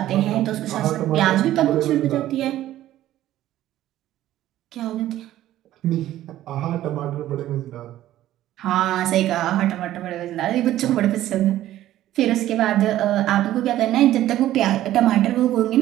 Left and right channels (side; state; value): left; quieter; 13.7 dB